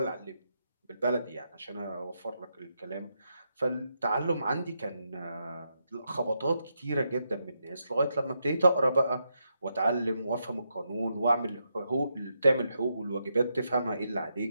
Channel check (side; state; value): both; inverted; correlation -0.82